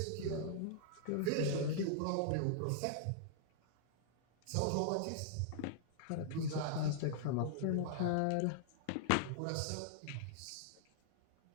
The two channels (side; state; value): both; different; correlation -0.01